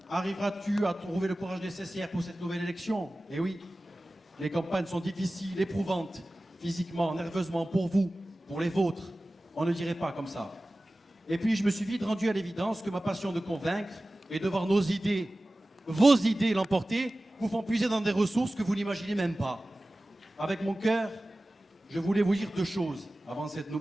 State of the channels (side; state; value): both; normal; correlation 0.97